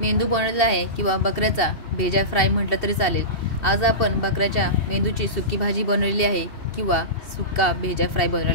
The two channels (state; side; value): late; right; 2.7 ms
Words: बनवलेला आहे किंवा बकऱ्याचा भेजा फ्राय म्हटलं तरी चालेल. आज आपण बकऱ्याच्या मेंदूची सुकी भाजी बनवलेली आहे किंवा सुक्का भेजा फ्राय